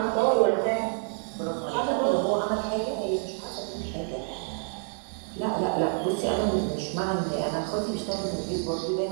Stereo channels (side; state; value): left; silent; 59 dB below the other